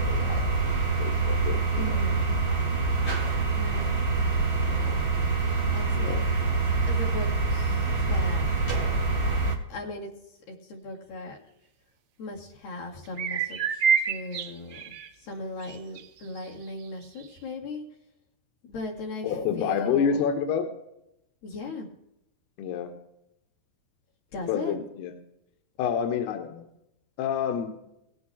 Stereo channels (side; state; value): right; late; 13 ms